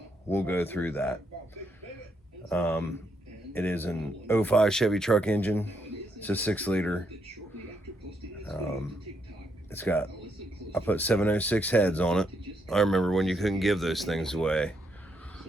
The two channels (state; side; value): normal; both; correlation 0.77